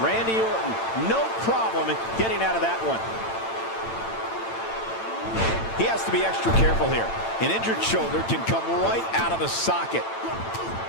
Randy Orton, no problem in getting out of that one. He has to be extra careful here. An injured shoulder can come right out of the socket.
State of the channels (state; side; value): late; right; 8.9 ms